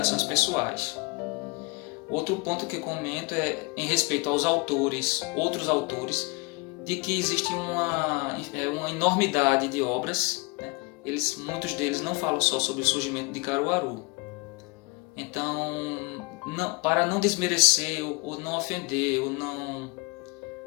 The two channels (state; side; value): quieter; right; 28.4 dB